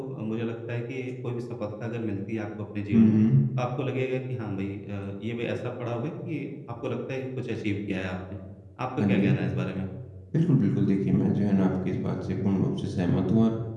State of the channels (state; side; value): identical; both; correlation 1.00